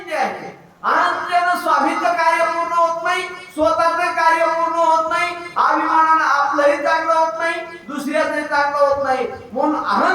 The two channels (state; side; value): identical; both; correlation 1.00